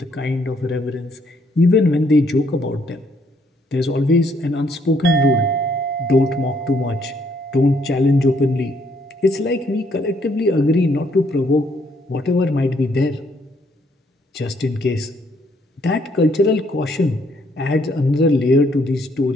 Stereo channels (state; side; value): normal; both; correlation 0.69